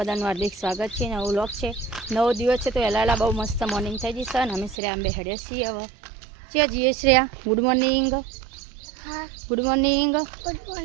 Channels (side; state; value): left; drops out; at 4.8 s